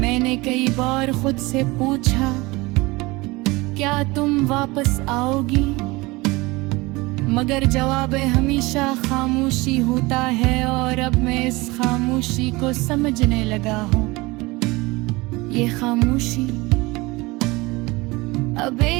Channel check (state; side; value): quieter; left; 22.7 dB